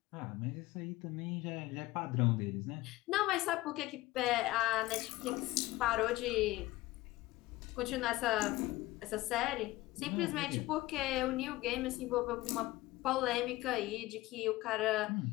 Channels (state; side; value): quieter; right; 18.5 dB